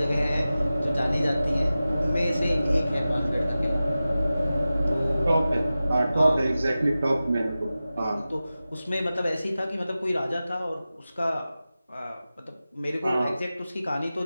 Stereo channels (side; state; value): both; inverted; correlation -0.95